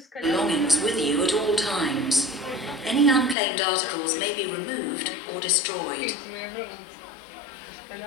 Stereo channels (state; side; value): drops out; right; at 3.4 s